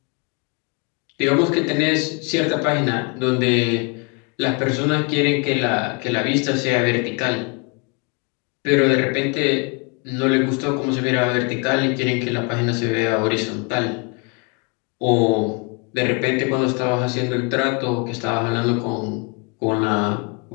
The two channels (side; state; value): right; quieter; 33.0 dB